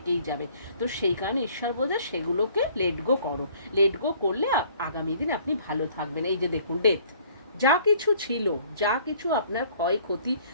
যাবে। তো সেই কারণে ঈশ্বর বলছে সেগুলোকে লেট গো করো, লেট গো করলে আগামী দিন আপনি ভালো থাকবেন। এই যে দেখুন ডেথ, যা কিছু ছিল, যা কিছু আপনার ক্ষয়ক্ষতি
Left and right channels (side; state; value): both; inverted; correlation -0.57